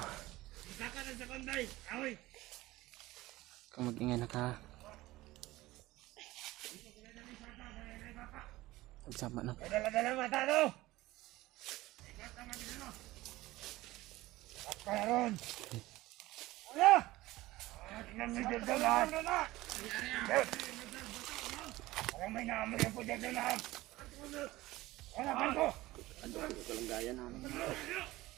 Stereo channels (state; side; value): quieter; left; 18.2 dB